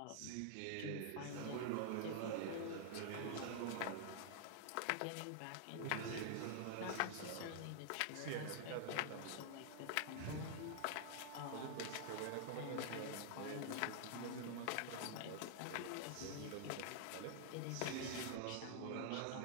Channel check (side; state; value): both; different; correlation -0.01